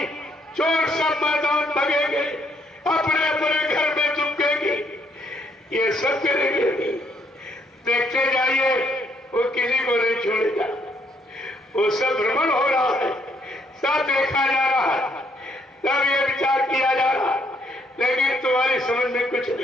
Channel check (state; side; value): normal; both; correlation 0.70